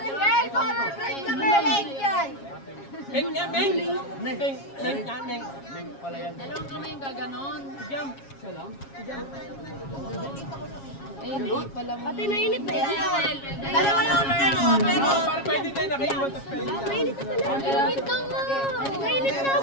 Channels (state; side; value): late; right; 7.3 ms